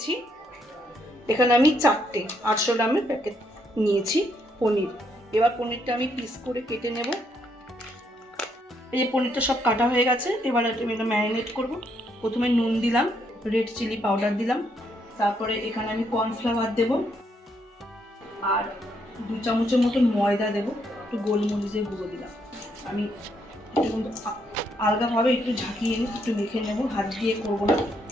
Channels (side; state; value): both; normal; correlation 0.74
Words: এখানে আমি 4টে 800 গ্রামের প্যাকেট নিয়েছি পনির। এবার পনিরটা আমি পিস করে কেটে নেব। এই যে পনিরটা সব কাটা হয়ে গেছে। এবার আমি এটা ম্যারিনেট করব। প্রথমে নুন দিলাম, রেড চিলি পাউডার দিলাম, তারপরে এখানে আমি কর্নফ্লাওয়ার দেব, আর 2 চামচের মতো ময়দা দেব, একটু গোলমরিচের গুঁড়ো দিলাম। আমি একটু আলগাভাবে একটু ঝাঁকিয়ে নিয়ে একটু মেখে নেব, হাত দিয়ে করবো না